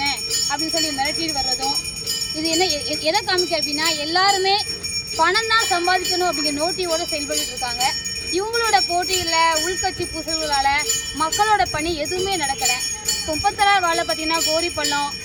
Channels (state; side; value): identical; both; correlation 1.00